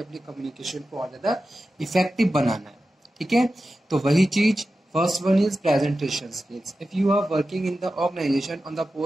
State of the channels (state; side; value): normal; both; correlation 0.93